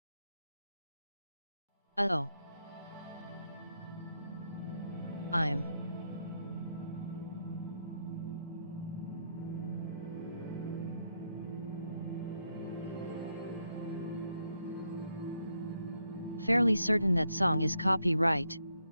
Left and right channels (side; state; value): both; inverted; correlation -0.78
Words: as a dark... Uh-oh. I'm... fairly certain that song is copyright.